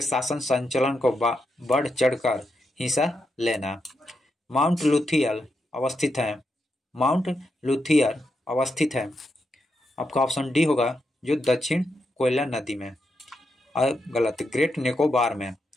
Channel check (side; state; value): both; normal; correlation 0.84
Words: शासन संचालन को बढ़ चढ़कर हिस्सा लेना। माउंट लुथियर अवस्थित है। आपका ऑप्शन डी होगा जो दक्षिण कोयला नदी में। गलत। ग्रेट निकोबार में।